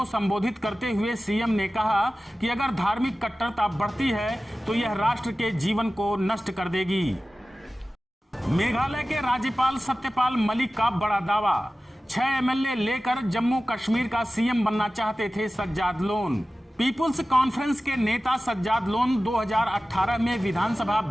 संबोधित करते हुए सीएम ने कहा कि अगर धार्मिक कट्टरता बढ़ती है तो यह राष्ट्र के जीवन को नष्ट कर देगी। मेघालय के राज्यपाल सत्यपाल मलिक का बड़ा दावा। 6 एमएलए लेकर जम्मू कश्मीर का सीएम बनना चाहते थे सज्जाद लोन। पीपुल्स कॉन्फ्रेंस के नेता सज्जाद लोन 2018 में विधानसभा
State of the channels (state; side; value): normal; both; correlation 0.96